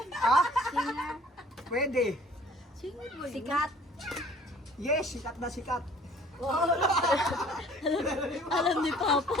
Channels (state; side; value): normal; both; correlation 0.53